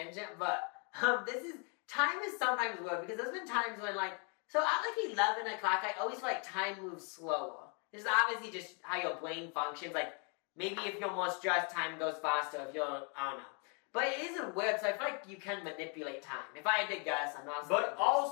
but time is sometimes weird, because there's been times when, like, so at like 11 o'clock, I always feel like time moves slower. This is obviously just how your brain functions. Like, maybe if you're more stressed, time goes faster. If you're, I don't know. But it isn't weird, so I feel like you can manipulate time. If I had to guess, I'm not... But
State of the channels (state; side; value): quieter; right; 36.9 dB